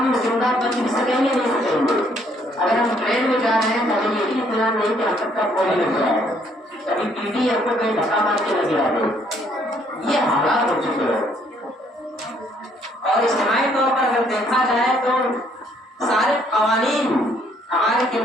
زندہ بچ بھی سکیں گے نہیں سکیں گے۔ اگر ہم ٹرین میں جا رہے ہیں تو ہمیں یہ بھی اطمینان نہیں کہ ہم تک کا گولی لگ جائے، کبھی پی ٹی ہم کو کہیں دھکا مار کے لگے آگے۔ یہ حالات ہو چکے ہیں۔ اور اجتماعی طور پر اگر دیکھا جائے تو سارے قوانین ہمارے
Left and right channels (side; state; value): both; normal; correlation 0.66